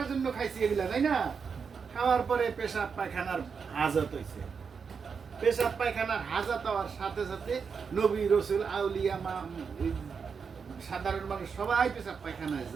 জন্য খাইছি এগুলা, তাই না? খাওয়ার পরে পেশাব পায়খানার হাজত হয়েছে। পেশাব পায়খানার হাজত হওয়ার সাথে সাথে নবী রসুল আউলিয়া সাধারণ মানুষ সবাই পেশাব পায়খানায়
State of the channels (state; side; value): quieter; left; 5.9 dB